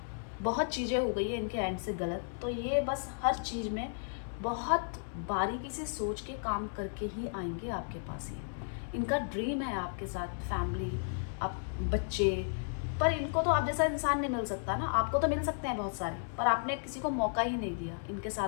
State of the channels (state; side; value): silent; right; digital silence